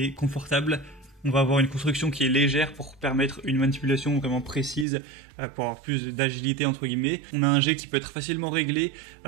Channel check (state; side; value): drops out; left; at 4.9 s